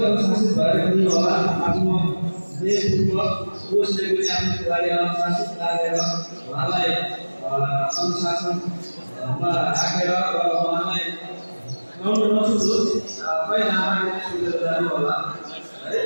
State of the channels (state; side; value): inverted; both; correlation -1.00